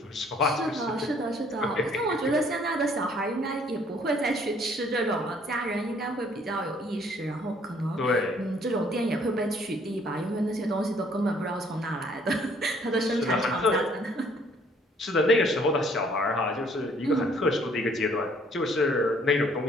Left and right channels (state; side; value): normal; both; correlation 0.61